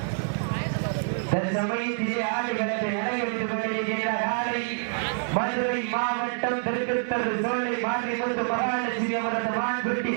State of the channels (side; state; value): left; silent; digital silence